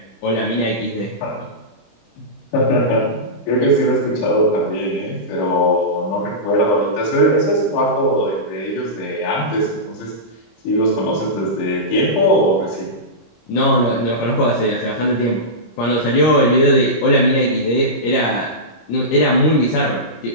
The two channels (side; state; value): right; late; 26 ms